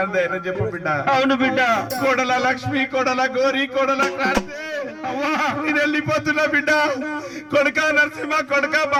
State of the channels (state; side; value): identical; both; correlation 1.00